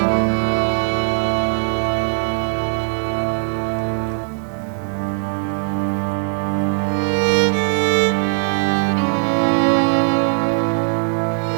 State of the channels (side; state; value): left; silent; 55 dB below the other